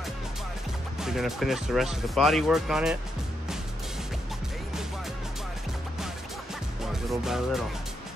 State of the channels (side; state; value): both; normal; correlation 0.81